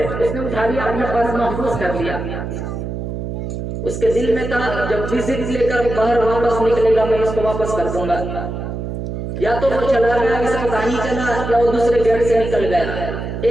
उसने उठा लिया, अपने पास महफूज कर लिया। उसके दिल में था जब विजिट लेकर बाहर वापस निकलेगा मैं इसको वापस कर दूंगा। या तो वो चला गया, इसका कहानी चला, या वो दूसरे गेट से निकल गया।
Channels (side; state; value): right; noise; hum, 5 dB below the sound